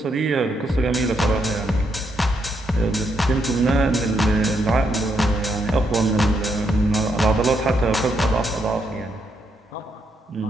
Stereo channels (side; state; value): both; normal; correlation 0.78